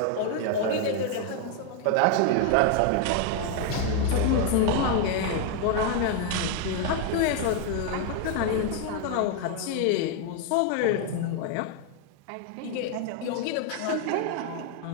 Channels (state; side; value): different; both; correlation 0.01